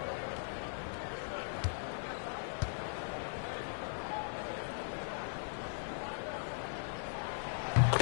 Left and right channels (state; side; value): silent; right; 52 dB below the other